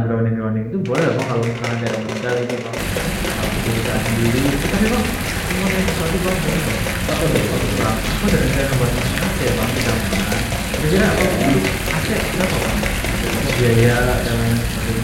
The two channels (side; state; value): both; identical; correlation 1.00